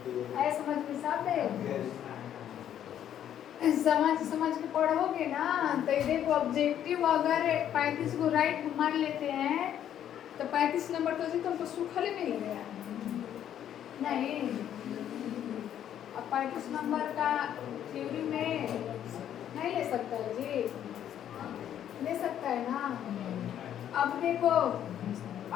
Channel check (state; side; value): quieter; right; 10.3 dB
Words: ऐ समझ में साफ है, समझ के पढ़ोगे ना तो ये देखो ऑब्जेक्टिव अगर 35 को राइट मान लेते हैं तो 35 नंबर तो जी तुमको सूखल मिल गया नहीं। अब 35 नंबर का थ्योरी में नहीं ले सकता है जी, ले सकता है ना। अब देखो अब